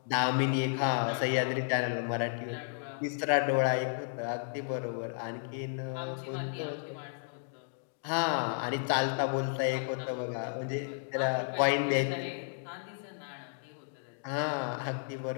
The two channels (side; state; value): right; silent; digital silence